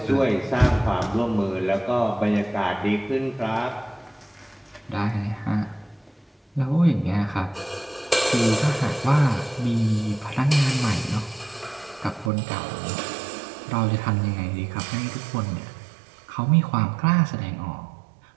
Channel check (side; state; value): left; drops out; at 12.3 s